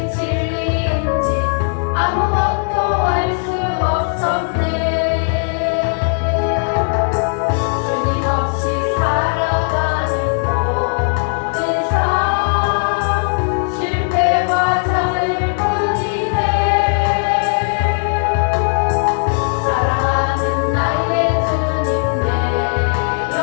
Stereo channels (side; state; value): right; silent; 67 dB below the other